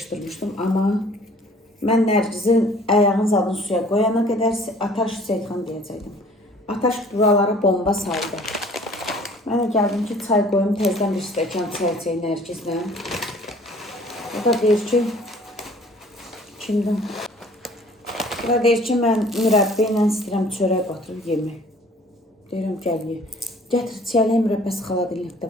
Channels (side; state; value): both; normal; correlation 0.52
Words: amma mən Nərgizin ayağın zadını suya qoyana qədər Ataş Seyidxan deyəcəkdim. Ataş buralara bomba saldı. Mən də gəldim ki, çay qoyum, tezdən bir stəkan çay içək Nərgizlə. O da deyir ki, kimdən? O da deyir ki, mən mürəbbə ilə istəyirəm çörək batırıb yemək. Deyirəm, gəl ye. Gətir, çiyələyə mürəbbəsi